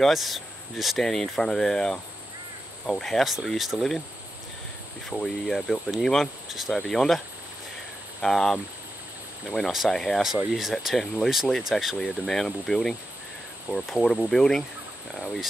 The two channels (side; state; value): both; normal; correlation 0.89